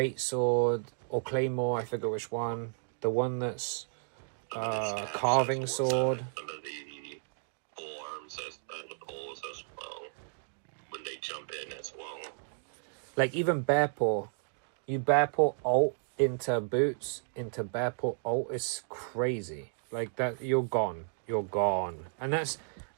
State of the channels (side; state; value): left; silent; digital silence